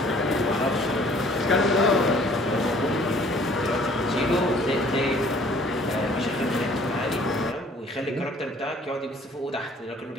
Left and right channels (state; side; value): normal; both; correlation 0.56